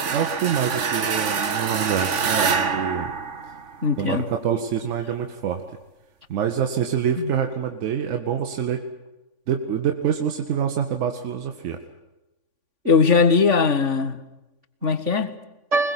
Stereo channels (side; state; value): left; late; 3.5 ms